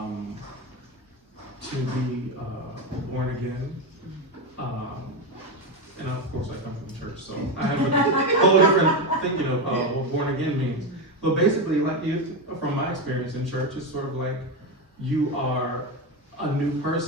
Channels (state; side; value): normal; both; correlation 0.13